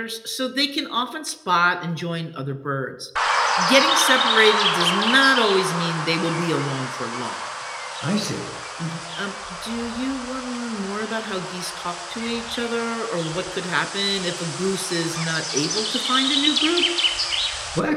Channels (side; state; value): both; identical; correlation 1.00